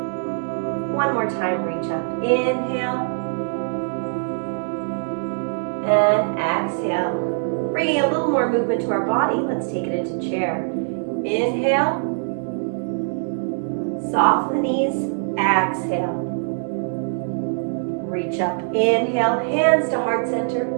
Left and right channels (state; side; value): silent; left; digital silence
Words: One more time, reach up. Inhale. And exhale. Bringing a little more movement to our body. Let's take it into chair. Inhale. Soften the knees. Exhale. Reach up. Inhale. Hands to heart center.